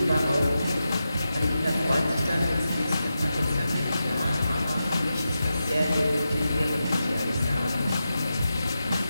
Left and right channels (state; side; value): inverted; both; correlation -0.90